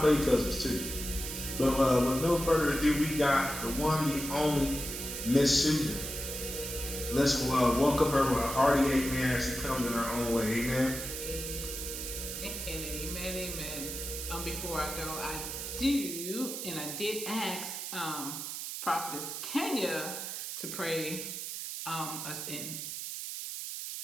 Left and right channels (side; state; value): right; noise; hiss, 6 dB below the sound